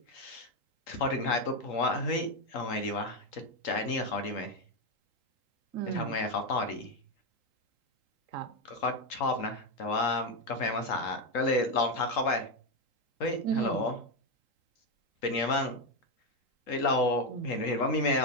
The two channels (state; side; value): late; right; 3.8 ms